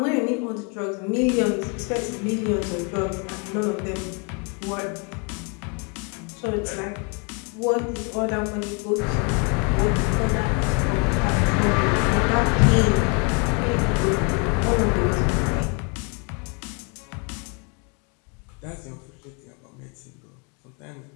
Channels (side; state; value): right; quieter; 33.3 dB